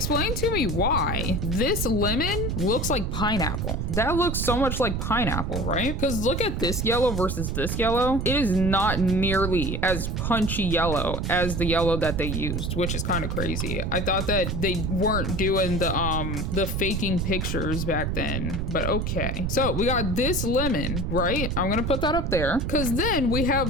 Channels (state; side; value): noise; right; rumble, 1 dB below the sound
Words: to me why this lemon looks like pineapple. That looks so much like pineapple, right? Because look at this yellow versus this yellow. It is not nearly as punchy yellow as the yellow that they used, which is kind of crazy. I thought that they weren't doing the faking pictures back then, but okay. So we got this lemon, right? I'm gonna put that up there because then we